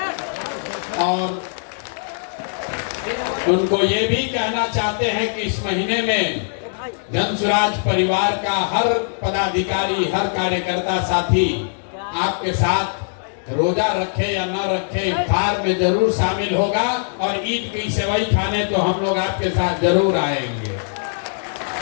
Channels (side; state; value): right; silent; digital silence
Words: और उनको ये भी कहना चाहते हैं कि इस महीने में जन स्वराज परिवार का हर पदाधिकारी, हर कार्यकर्ता साथी आपके साथ रोजा रखे या न रखे इफ्तार में जरूर शामिल होगा और ईद की सेवई खाने तो हम लोग आपके साथ जरूर आएंगे।